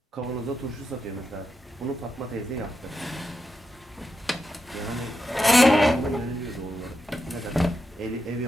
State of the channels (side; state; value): both; normal; correlation 0.87